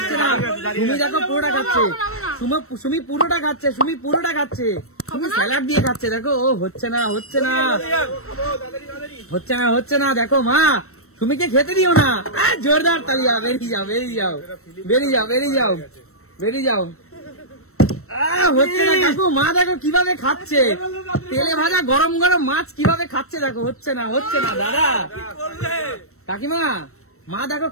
না। সুমি দেখো পুরোটা খাচ্ছে, সুমি পুরোটা খাচ্ছে, সুমি পুরোটা খাচ্ছে, সুমি স্যালাড দিয়ে খাচ্ছে। দেখো ও হচ্ছে না হচ্ছে না হচ্ছে না হচ্ছে না। দেখো মা, সুমিকে খেতে দিও না। জোরদার তালিয়া, বেরিয়ে যাও বেরিয়ে যাও বেরিয়ে যাও বেরিয়ে যাও বেরিয়ে যাও। হচ্ছে না কাকু, মা দেখো কিভাবে খাচ্ছে তেলে ভাজা গরম গরম মাছ, কিভাবে খাচ্ছে দেখো। হচ্ছে না হচ্ছে না দাদা, কাকিমা মা দেখো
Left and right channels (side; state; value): right; late; 0.63 ms